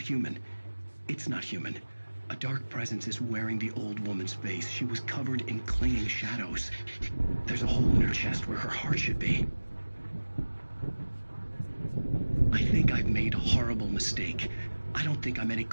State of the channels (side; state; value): both; inverted; correlation -1.00